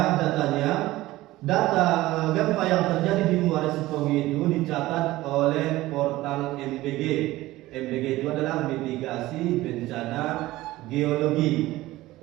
datanya. Data gempa yang terjadi di Muara Sipogi itu dicatat oleh portal MBG. MBG itu adalah mitigasi bencana geologi.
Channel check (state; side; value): quieter; left; 17.4 dB